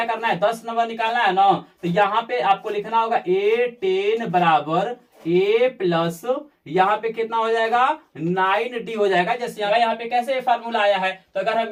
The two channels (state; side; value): identical; both; correlation 1.00